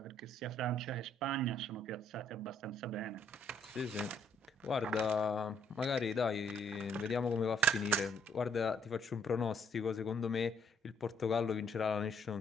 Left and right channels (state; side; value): normal; both; correlation 0.67